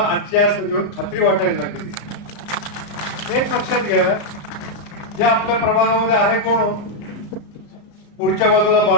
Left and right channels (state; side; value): late; right; 34 ms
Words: सभेवर खात्री वाटायला लागली. एक लक्षात घ्या, जे आपल्या प्रभागामध्ये आहे कोण, पुढच्या बाजूला